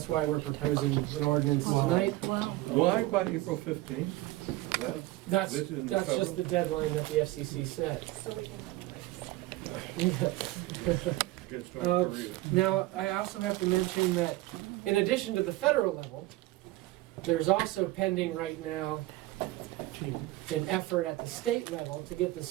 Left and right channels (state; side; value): quieter; left; 18.4 dB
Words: why we're proposing an ordinance tonight. Wow. Why by April 15th? That's This is in the just federal? the deadline that the FCC set. So we can run the race. Against North Korea. Now, I also have to mention that in addition to the federal level, there's also pending right now an effort at the state level to get the